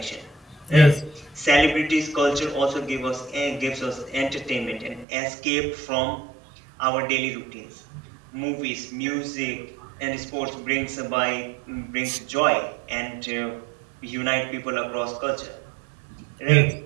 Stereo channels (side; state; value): left; drops out; at 5.1 s